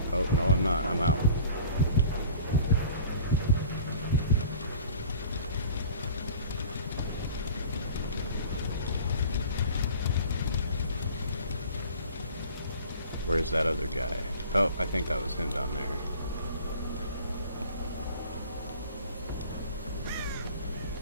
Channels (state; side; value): inverted; both; correlation -0.45